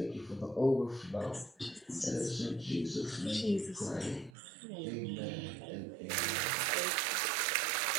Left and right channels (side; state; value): left; drops out; at 4.3 s